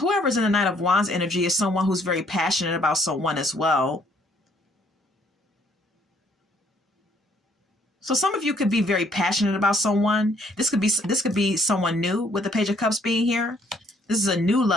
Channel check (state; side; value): normal; both; correlation 0.65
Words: in the Knight of Wands energy is someone who's very passionate about someone as well. So some of you could be very passionate about someone. This could be someone new with the Page of Cups being here. This is a new